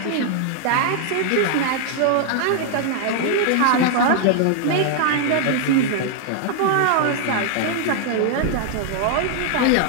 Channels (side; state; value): both; different; correlation 0.00